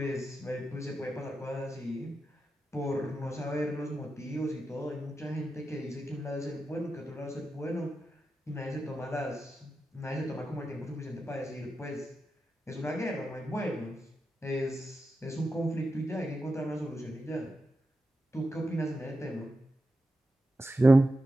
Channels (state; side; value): normal; both; correlation 0.90